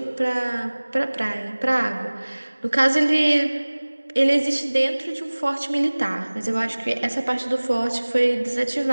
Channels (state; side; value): inverted; both; correlation -1.00